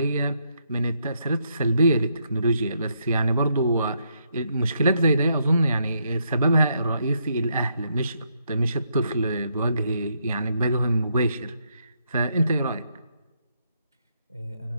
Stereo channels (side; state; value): both; inverted; correlation -0.76